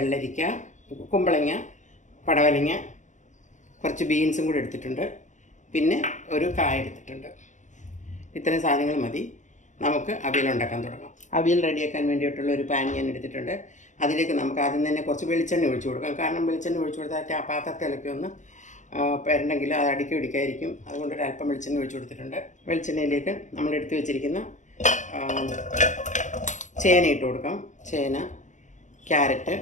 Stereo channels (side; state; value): right; late; 0.35 ms